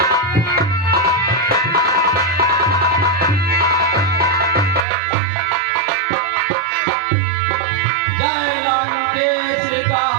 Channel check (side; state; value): left; drops out; at 4.9 s